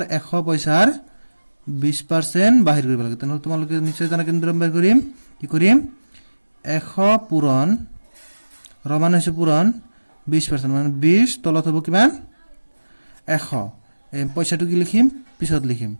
100 পইচাৰ 20% বাহিৰ কৰিব লাগে তেনেহ'লে তোমালোকে নিশ্চয় জানা কেনেদৰে বাহিৰ কৰিম কি কৰিম 100 পূৰণ ৰমান হৈছে পূৰণ 20% মানে 20 তলত হ'ব কিমান 100 এই পইচাটো কি লিখিম পিছত লিখিম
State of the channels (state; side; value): inverted; both; correlation -1.00